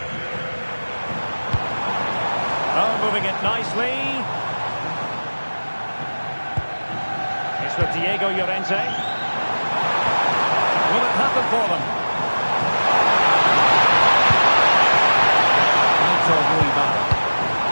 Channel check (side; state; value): both; inverted; correlation -1.00